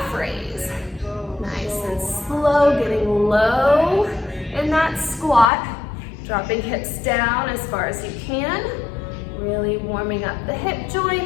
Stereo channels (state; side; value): drops out; right; at 5.5 s